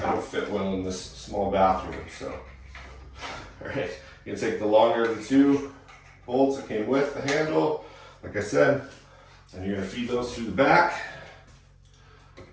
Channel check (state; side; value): identical; both; correlation 1.00